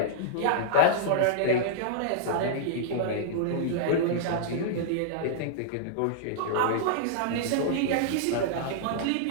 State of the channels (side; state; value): both; different; correlation -0.02